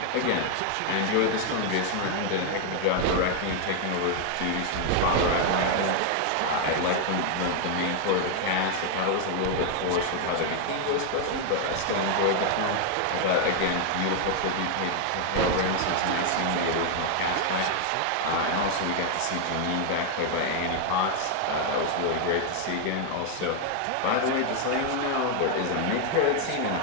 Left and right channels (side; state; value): both; different; correlation 0.00